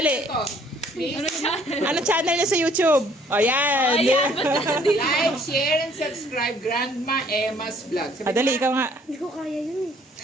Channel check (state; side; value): normal; both; correlation 0.60